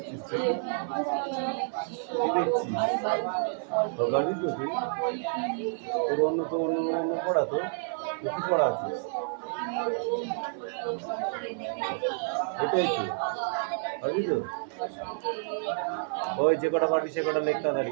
অন্য পড়া তো কি পড়া আছে? এটাই তো, ওই যে কটা পারবি সে কটা লেখতে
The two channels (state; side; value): silent; left; 58 dB below the other